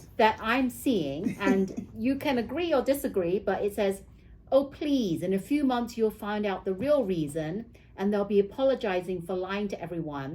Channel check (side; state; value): both; identical; correlation 1.00